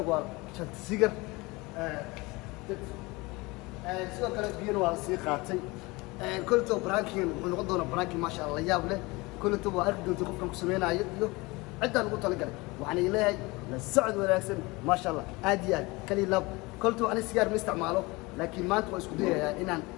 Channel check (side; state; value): right; quieter; 23.7 dB